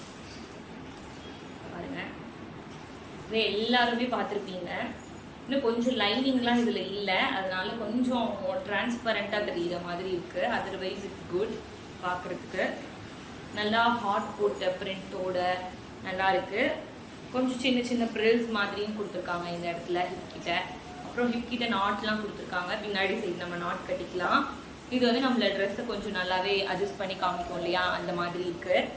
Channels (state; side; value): identical; both; correlation 1.00